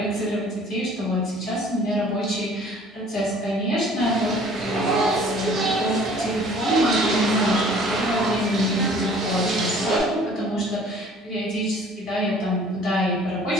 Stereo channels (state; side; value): normal; both; correlation 0.52